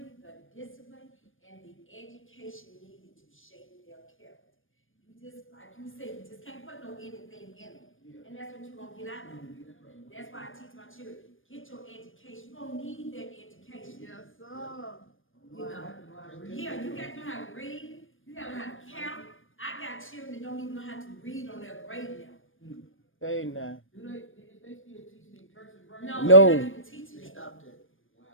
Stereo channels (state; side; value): late; right; 0.59 ms